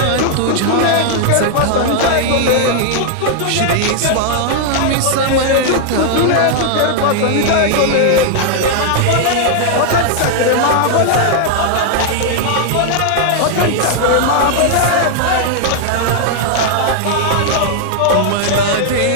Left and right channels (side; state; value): both; different; correlation -0.01